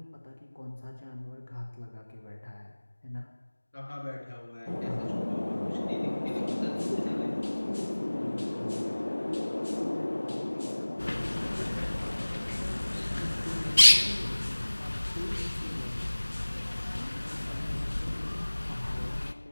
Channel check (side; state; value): both; inverted; correlation -1.00